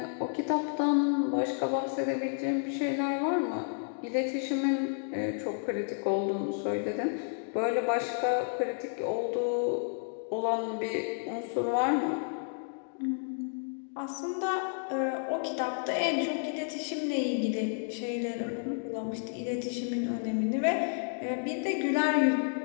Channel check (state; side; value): silent; right; digital silence